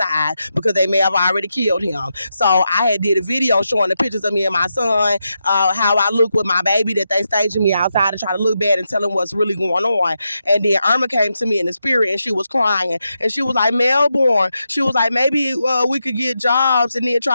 because they may have already killed him. So I had did a video showing the pictures of me and my son, how I look with my baby, that they staging me outside to try to look bad and tell them what's really going on. And then Irma came to me in the spirit and she was crying. And she was like, Melbourne. She was like, maybe we could get jobs and then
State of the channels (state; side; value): inverted; both; correlation -0.86